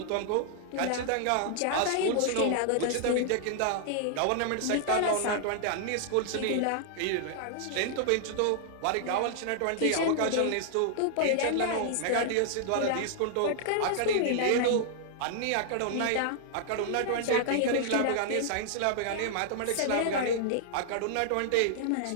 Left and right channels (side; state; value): both; different; correlation -0.01